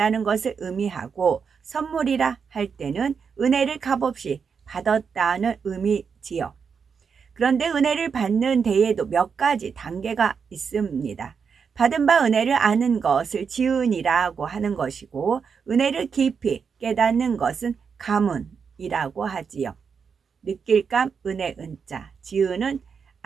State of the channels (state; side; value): quieter; left; 6.1 dB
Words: 것을 의미하고 선물이라 할 때는 은혜를 값없이 받았다는 의미지요. 그런데 은혜를 받는 데에도 몇 가지 단계가 있습니다. 받은 바 은혜를 아는 것을 지은이라고 하는 것이고 은혜를 깊이 깨닫는 것은 가문이라고 하지요. 느낄감 은혜 은자, 지은은